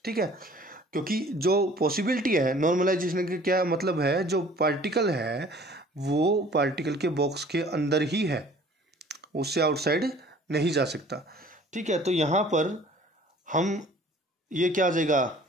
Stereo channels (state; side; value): normal; both; correlation 0.51